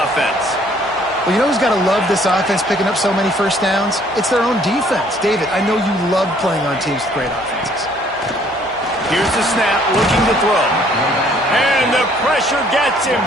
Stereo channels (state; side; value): normal; both; correlation 0.61